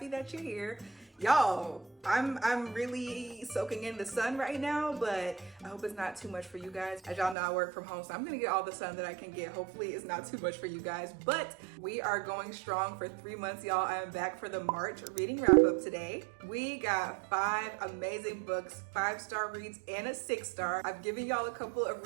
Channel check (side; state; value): left; drops out; at 7.4 s